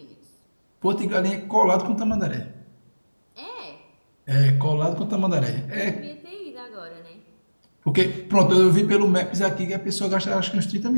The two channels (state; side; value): inverted; both; correlation -1.00